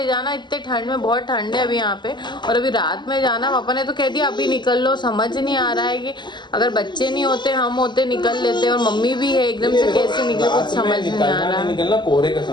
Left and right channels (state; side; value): late; right; 0.22 ms